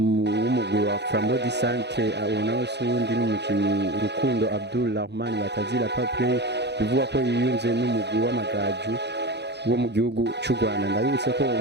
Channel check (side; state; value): left; late; 0.50 ms